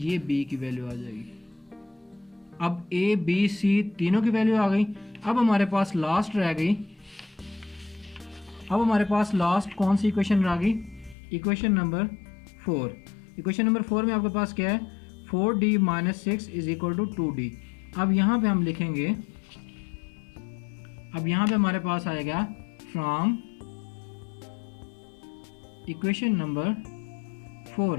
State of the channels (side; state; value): right; drops out; at 11.2 s